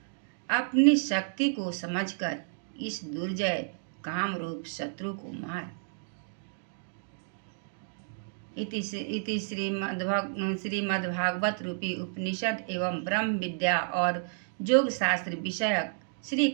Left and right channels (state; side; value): silent; left; digital silence